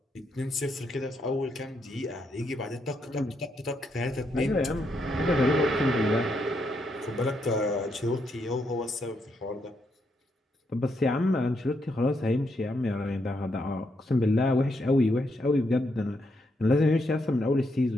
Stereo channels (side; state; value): both; normal; correlation 0.79